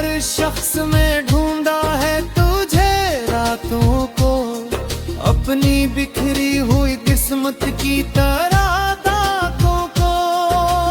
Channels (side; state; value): both; identical; correlation 1.00